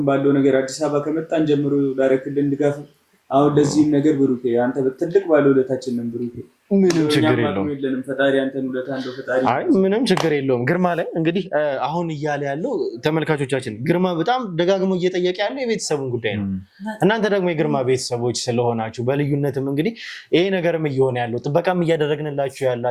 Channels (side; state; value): both; identical; correlation 1.00